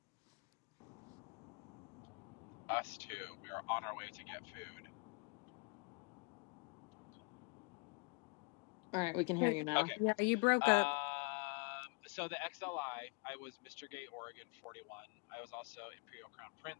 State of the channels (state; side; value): quieter; right; 32.5 dB